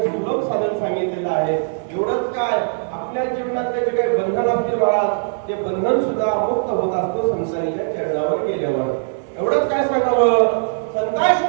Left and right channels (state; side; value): silent; left; digital silence